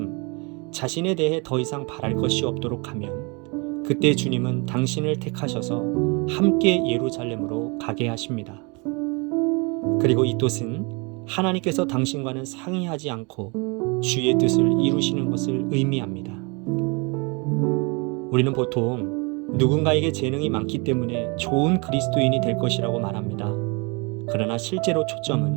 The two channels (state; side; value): quieter; left; 30.3 dB